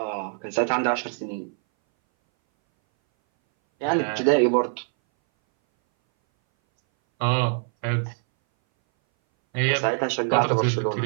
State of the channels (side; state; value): left; silent; 60 dB below the other